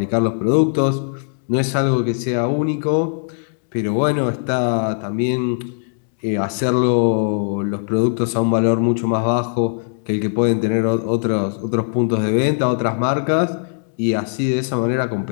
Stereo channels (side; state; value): right; silent; digital silence